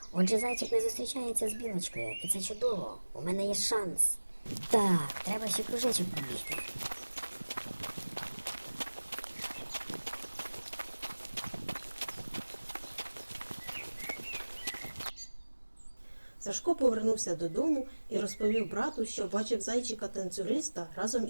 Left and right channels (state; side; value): inverted; both; correlation -1.00